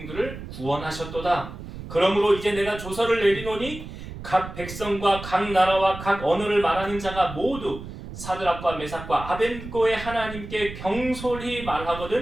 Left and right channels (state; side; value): noise; right; rumble, 11 dB below the sound